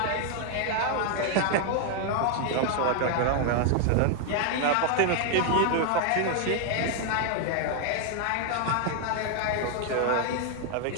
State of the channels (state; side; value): different; both; correlation 0.00